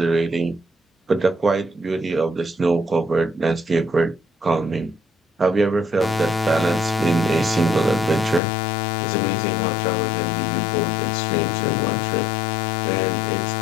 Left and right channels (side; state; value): right; drops out; at 8.4 s